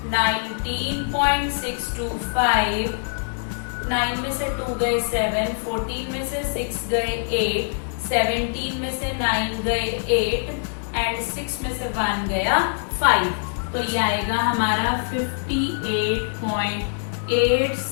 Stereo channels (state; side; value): silent; right; digital silence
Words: 19.625, 9 में से 2 गए 7, 14 में से 6 गए 8, 17 में से 9 गए 8 एंड 6 में से 1 गया 5। तो ये आएगा हमारा